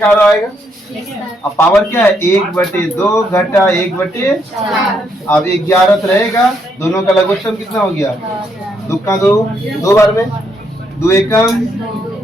आएगा। अब पावर क्या है, 1/2 घटा 1/4। अब 11 रहेगा, दोनों का लघुत्तम कितना हो गया, 2 का 2 बार में 2 एकम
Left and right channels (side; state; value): both; normal; correlation 0.75